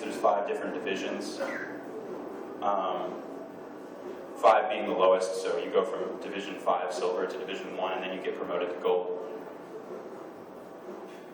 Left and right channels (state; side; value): identical; both; correlation 1.00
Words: there's 5 different divisions. 5 being the lowest, so you go from Division 5 silver to Division 1, and then you get promoted to gold.